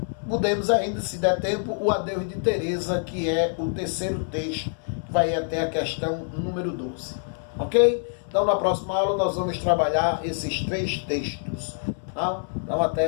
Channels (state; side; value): silent; right; 61 dB below the other